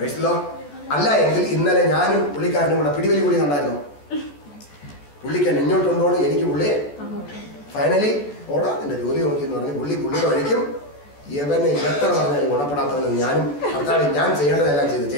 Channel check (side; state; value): right; late; 14 ms